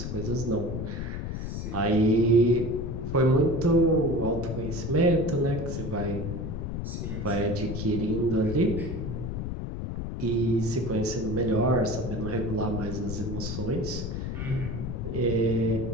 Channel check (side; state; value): left; noise; rumble, 5 dB below the sound